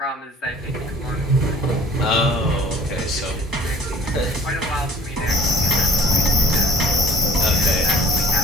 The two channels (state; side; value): normal; both; correlation 0.52